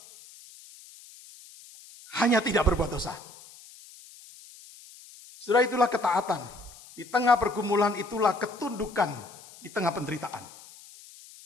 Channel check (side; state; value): left; noise; hiss, 20 dB below the sound